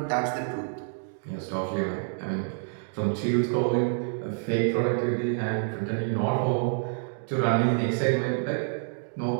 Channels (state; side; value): silent; left; digital silence